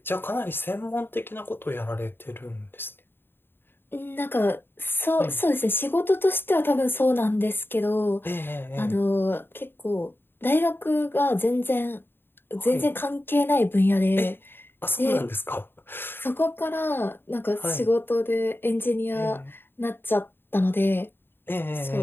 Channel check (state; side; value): late; right; 0.10 ms